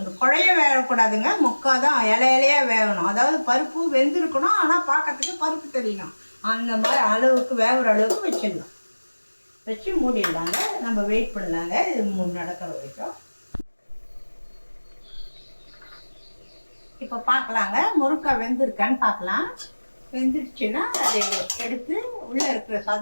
குழைய வேகக்கூடாதுங்க, முக்காதான் இலையிலையாக வேகணும். அதாவது பருப்பு வெந்திருக்கணும், ஆனால் பார்க்கறதுக்கு பருப்பு தெரியணும். அந்த மாதிரி அளவுக்கு வேகிற அளவுக்கு வச்சிடலாம். வச்சு மூடிடலாங்க. நம்ம வெயிட் பண்ணலாங்க. இது நடக்கிற வரைக்கும். இப்போ பார்க்கலாங்க, முருங்கைக்காய் வெந்திருக்கான்னு பார்க்கலாம். வெந்துடுச்சுன்னா அதை எடுத்து உள்ளே இருக்கிற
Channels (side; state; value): both; inverted; correlation -1.00